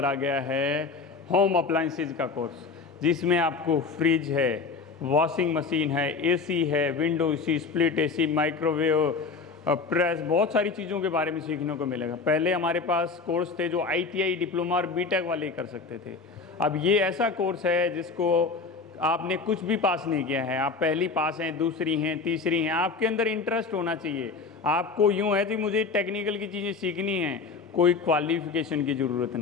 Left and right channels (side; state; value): right; quieter; 4.6 dB